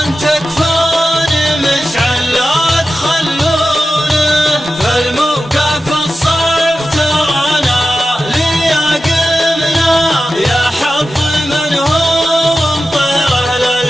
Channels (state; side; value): normal; both; correlation 0.93